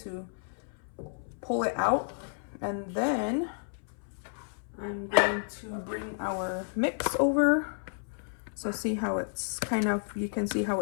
pull it out. And then I'm going to bring our mix over. So see how it's kind of, you can see how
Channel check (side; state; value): right; silent; 57 dB below the other